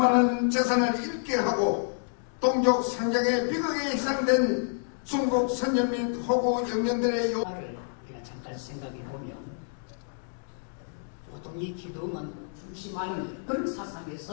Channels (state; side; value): silent; right; digital silence